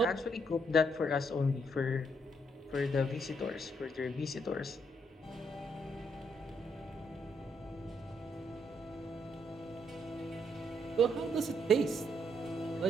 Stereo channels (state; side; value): normal; both; correlation 0.74